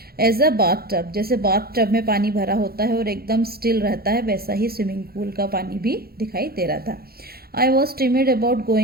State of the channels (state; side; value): late; left; 0.44 ms